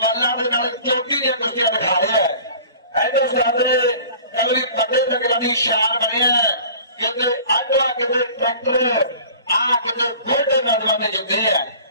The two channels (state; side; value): inverted; both; correlation -0.44